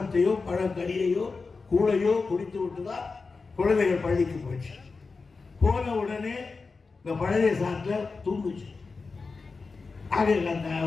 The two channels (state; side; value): quieter; right; 4.3 dB